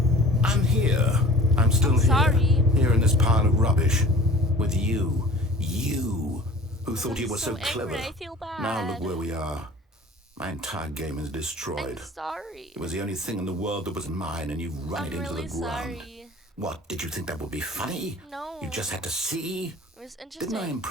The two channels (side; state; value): both; normal; correlation 0.44